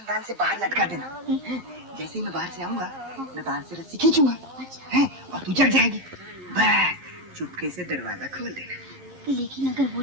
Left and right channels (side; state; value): left; late; 11 ms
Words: से बाहर लटका देना। जैसे ही मैं बाहर से आऊंगा, मैं बाहर से रस्सी खींचूंगा, हैं, और तू जग जाएगी। बस चुपके से दरवाजा खोल देना। लेकिन अगर वो